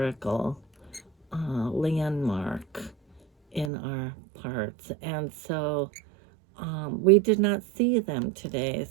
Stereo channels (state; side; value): drops out; left; at 3.7 s